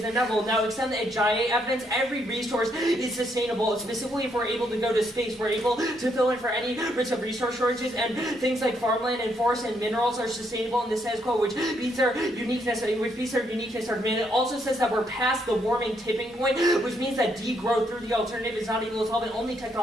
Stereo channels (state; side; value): normal; both; correlation 0.74